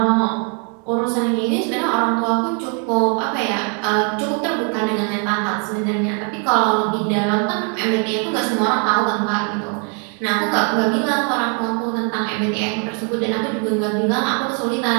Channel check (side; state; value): left; quieter; 39.5 dB